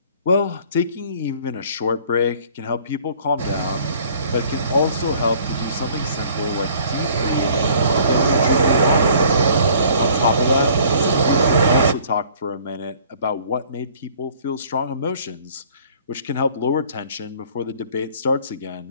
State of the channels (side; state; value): both; inverted; correlation -0.54